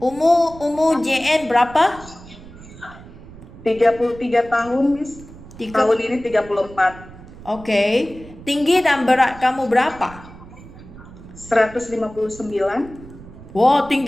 JN berapa? 33 tahun, Miss. Tiga. Tahun ini 34. Okey. Tinggi dan berat kamu berapa? 159. Wah,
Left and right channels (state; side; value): noise; right; rumble, 18 dB below the sound